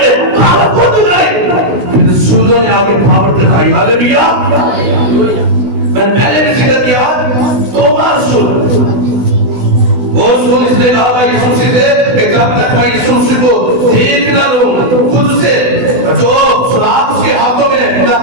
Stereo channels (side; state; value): left; late; 16 ms